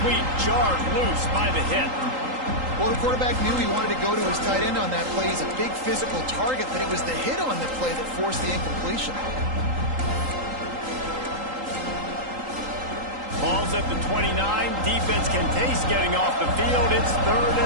Jarred loose by the hit. Well, the quarterback knew he wanted to go to his tight end on that play. He's a big physical target, but it was the hit on the play that forced the incompletion. Ball's at the 29. Defense can taste getting off the field. It's 3rd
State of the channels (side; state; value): left; late; 3.8 ms